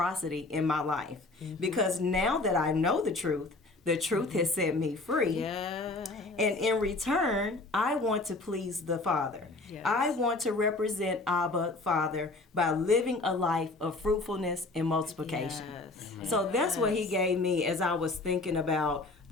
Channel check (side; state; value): right; quieter; 3.2 dB